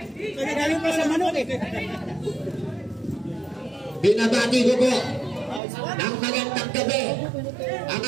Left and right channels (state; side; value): drops out; left; at 5.6 s